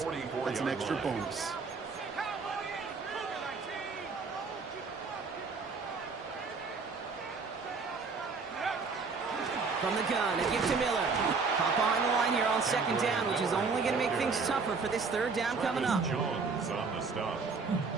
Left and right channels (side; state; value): left; quieter; 4.7 dB